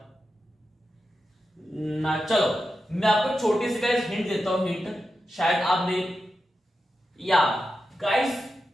ना? चलो मैं आपको छोटी सी गाइस हिंट देता हूं, हिंट शायद आपने या गाइस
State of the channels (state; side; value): normal; both; correlation 0.90